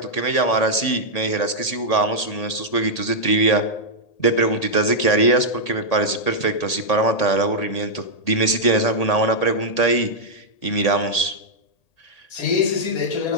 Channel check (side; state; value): right; late; 1.8 ms